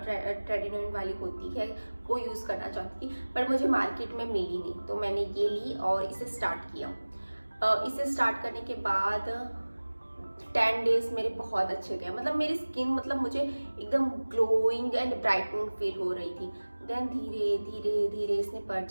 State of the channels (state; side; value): inverted; both; correlation -1.00